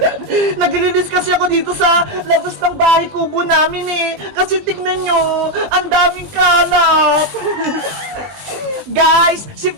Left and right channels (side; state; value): left; late; 20 ms